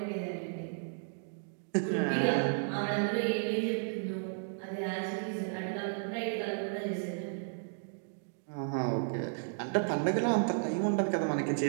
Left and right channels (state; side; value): silent; left; digital silence